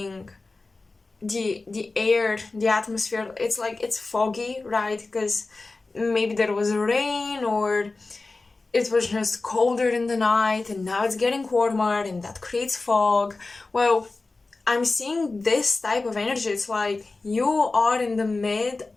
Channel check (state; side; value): quieter; right; 3.5 dB